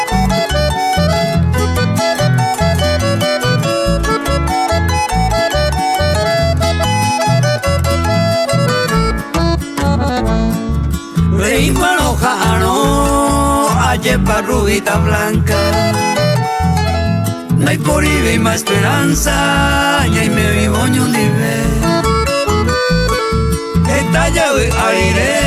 Yepa rubita blanca, no hay por y más esperanza, y me vivo ni libre. Esta llave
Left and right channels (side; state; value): both; identical; correlation 1.00